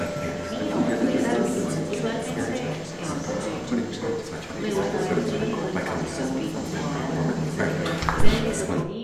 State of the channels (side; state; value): both; identical; correlation 1.00